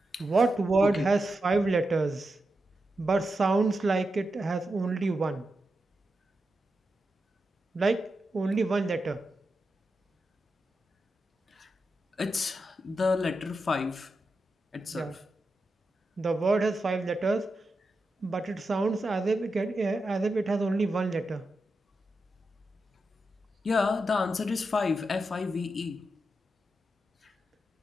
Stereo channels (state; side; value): normal; both; correlation 0.88